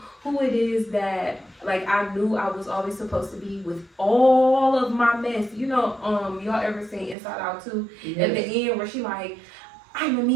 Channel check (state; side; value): drops out; left; at 7.2 s